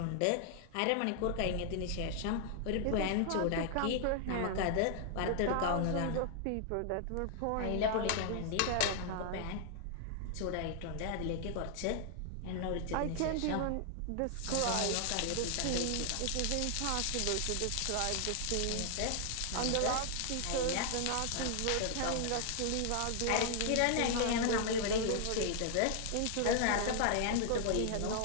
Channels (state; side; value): different; both; correlation 0.00